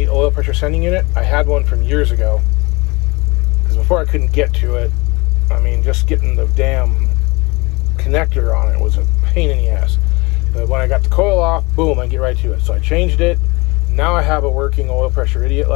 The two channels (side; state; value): right; quieter; 25.3 dB